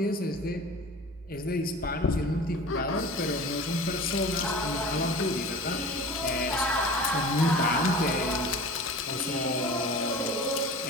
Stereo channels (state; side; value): normal; both; correlation 0.38